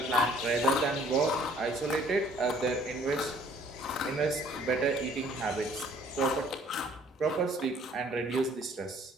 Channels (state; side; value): normal; both; correlation 0.57